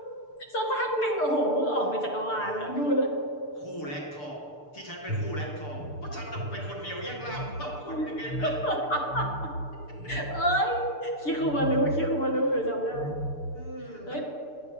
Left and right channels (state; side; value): late; right; 6.8 ms